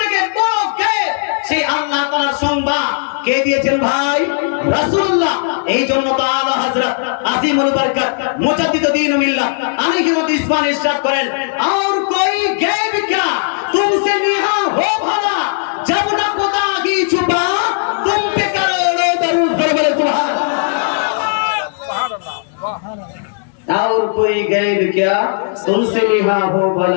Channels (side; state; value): right; silent; digital silence